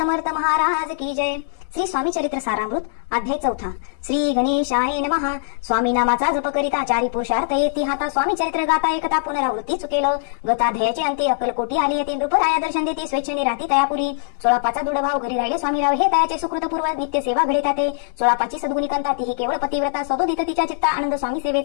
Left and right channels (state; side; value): silent; right; digital silence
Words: महाराज की जय. श्री स्वामी चरित्र सारामृत अध्याय 4. श्री गणेशाय नमः. स्वामी नामाचा जप करिता चारी पुरुषार्थ येती हाता. स्वामी चरित्र गाता एकता पुनरावृत्ती चुकेल. गताध्यायाचे अंती अक्कलकोटी आली येते. नृपराया दर्शन देती स्वेच्छेने राहती तयापुरी. 16 दृढ भाव घरी राहिले स्वामीराव हे तयाचे सुकृतपूर्व नित्य सेवा घडे ते. 16 सद्गुणी कंता तीही केवळ पतिव्रता. सदोदित तिच्या चित्ता आनंद स्वामी